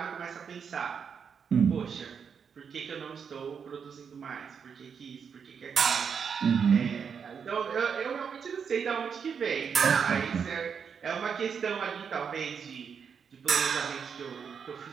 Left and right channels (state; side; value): quieter; left; 6.7 dB